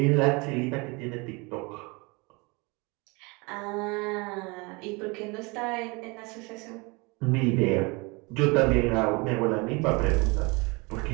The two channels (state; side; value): quieter; left; 27.8 dB